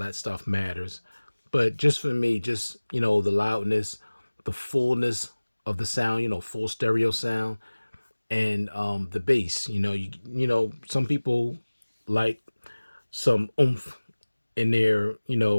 stuff matters. But just for me, just, the loudness, the fullness of the sound, full stereo sound, and the bass. Some people like some oomph in their,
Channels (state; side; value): inverted; both; correlation -1.00